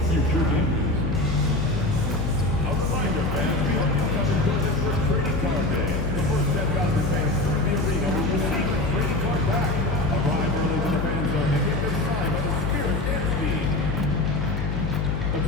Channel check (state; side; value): noise; left; hum, 2 dB below the sound